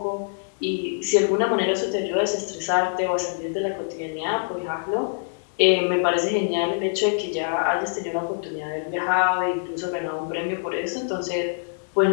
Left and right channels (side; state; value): right; silent; digital silence